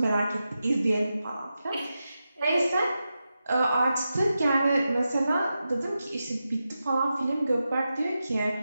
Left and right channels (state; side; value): inverted; both; correlation -0.90